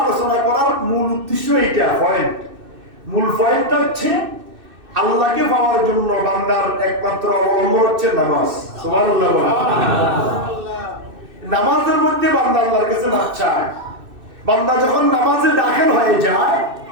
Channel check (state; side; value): late; left; 2.6 ms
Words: আলোচনা করার মূল উদ্দেশ্য এইটা, মূল পয়েন্টটা হচ্ছে আল্লাহকে পাওয়ার জন্য বান্দার একমাত্র অবলম্বন হচ্ছে নামাজ। সুবহানাল্লাহ। নামাজের মধ্যে বান্দা আল্লাহর কাছে মাফ চায়। বান্দা যখন নামাজে দাখিল হয়ে যায়,